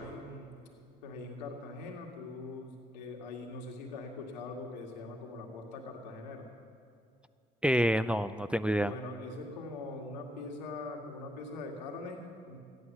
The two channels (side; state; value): both; normal; correlation 0.77